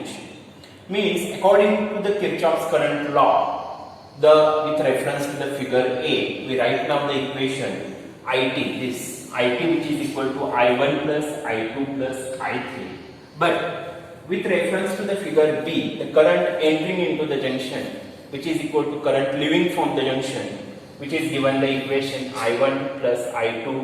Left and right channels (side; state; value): both; identical; correlation 1.00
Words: Means according to the Kirchoffs current law, with reference to the figure A, we write down the equation IT, this IT which is equal to I1 plus I2 plus I3. But with reference to the figure B, the current entering into the junction which is equal to current leaving from the junction, which is given the equation I1 plus